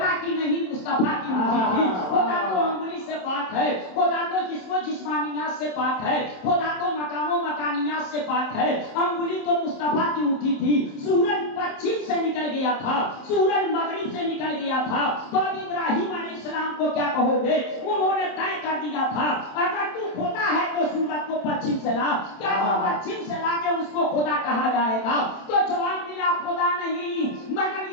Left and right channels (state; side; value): late; right; 27 ms